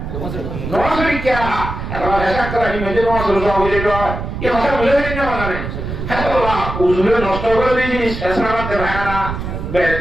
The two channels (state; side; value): noise; right; rumble, 6 dB below the sound